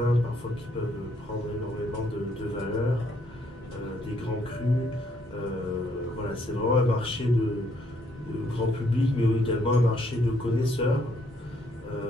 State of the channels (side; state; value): both; normal; correlation 0.70